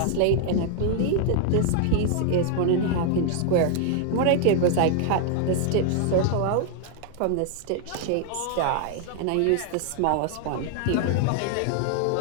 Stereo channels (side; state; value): both; different; correlation 0.00